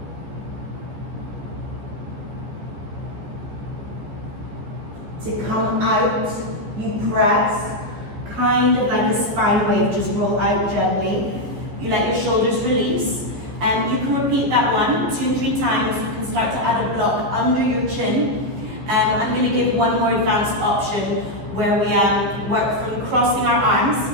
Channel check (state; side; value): late; left; 14 ms